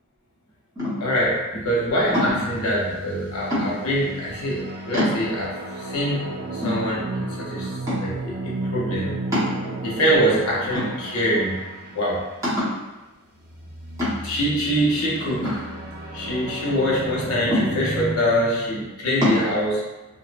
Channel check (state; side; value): normal; both; correlation 0.32